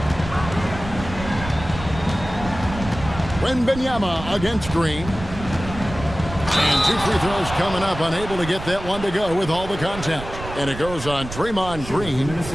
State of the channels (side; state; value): right; noise; rumble, 11 dB below the sound